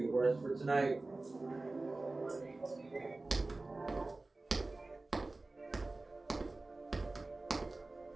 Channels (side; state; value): left; quieter; 3.2 dB